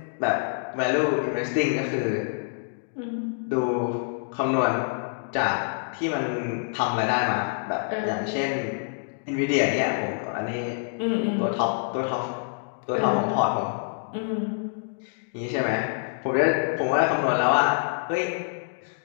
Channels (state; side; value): silent; right; digital silence